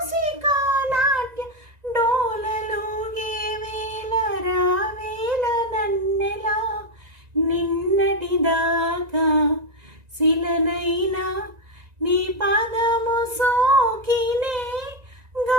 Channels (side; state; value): left; late; 1.9 ms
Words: నాట్య డోలలోగే వేల రావేల నన్నెలా నిన్నటిదాకా శిలనైనా నీ పాదము సోకినే